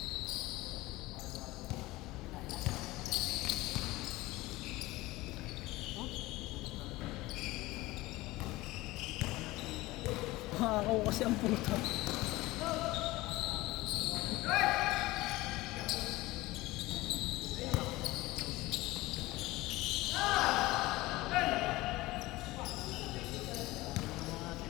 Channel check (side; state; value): right; quieter; 19.4 dB